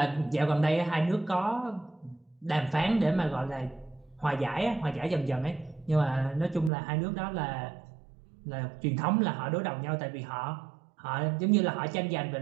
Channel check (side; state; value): left; drops out; at 6.7 s